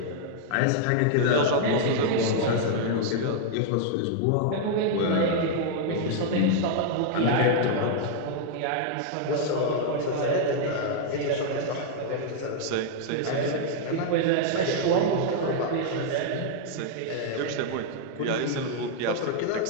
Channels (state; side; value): different; both; correlation -0.01